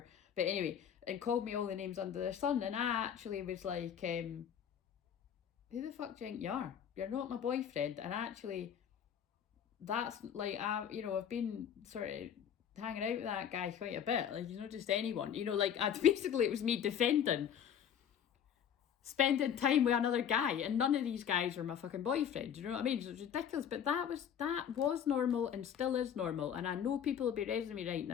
but anyway, and called me all the names under the sun, and I actually was like, who the fuck do you think you are? You're not my boyfriend. And actually, that's like, I've been sort of hanging out with that guy quite a bit, like, not just anyone, like, basically it was me defending spending time with another guy, and none of these guys were my fucking boyfriend, you know what I mean? So it's ridiculous, but that was normal and still is normal, and I know people will be raising me right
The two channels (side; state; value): right; quieter; 8.7 dB